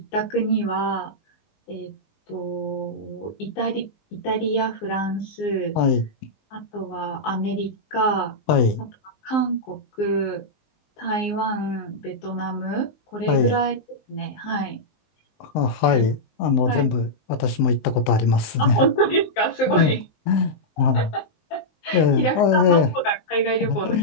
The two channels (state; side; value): late; right; 19 ms